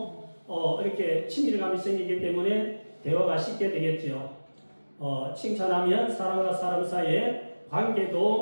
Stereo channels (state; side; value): inverted; both; correlation -1.00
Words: 이렇게 친밀감이 생기기 때문에 대화가 쉽게 되겠죠. 칭찬하면 사람과 사람 사이의